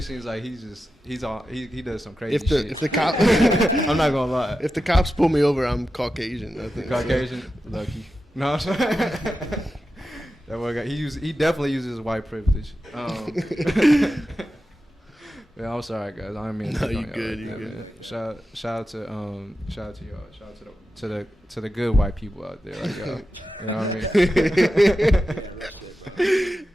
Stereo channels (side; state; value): both; normal; correlation 0.91